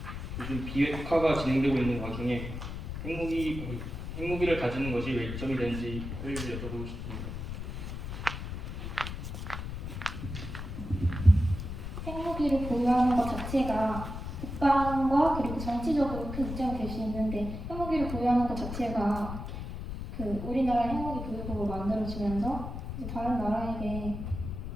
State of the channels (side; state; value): left; noise; rumble, 7 dB below the sound